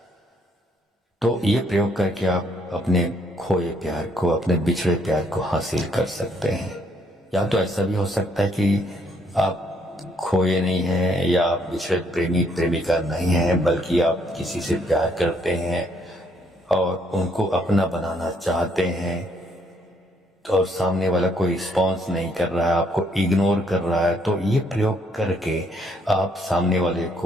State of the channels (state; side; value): normal; both; correlation 0.69